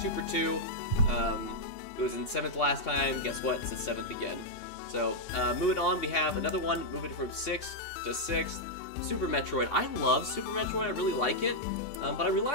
2 for 2. It was in 7th last time. Guess what? It's the 7th again. So, moving on, we have another one, moving from 6th to 6th. Super Metroid. I love Super Metroid. I really like it. But I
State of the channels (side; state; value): right; late; 2.8 ms